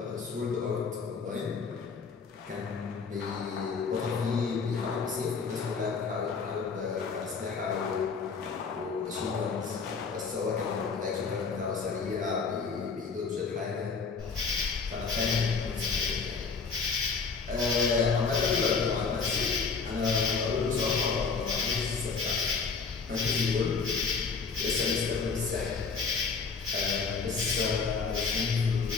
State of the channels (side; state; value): right; quieter; 5.1 dB